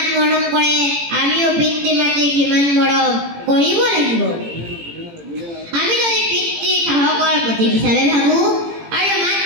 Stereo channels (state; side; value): late; left; 18 ms